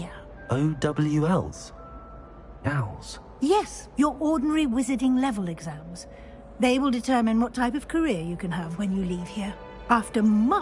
OWLs? Owls? Yes, your ordinary wizarding level exams. They will determine what type of career you can have when you leave here. After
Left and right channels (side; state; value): both; identical; correlation 1.00